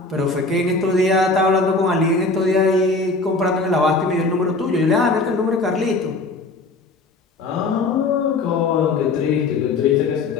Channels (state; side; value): quieter; right; 3.5 dB